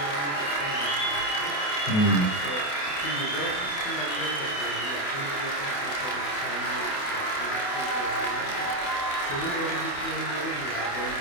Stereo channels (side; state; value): right; late; 28 ms